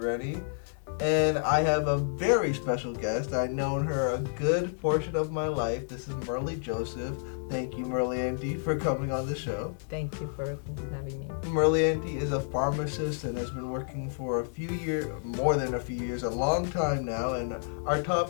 and I have a very special guest. I've known her a good portion of my life. This is Merle Joseph. Thank you, Merle Auntie, for coming on the show. Thank you for having me. Merle Auntie is a pharmacist and has been working for a few years, more than a few years, a long time now. And our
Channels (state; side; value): silent; right; digital silence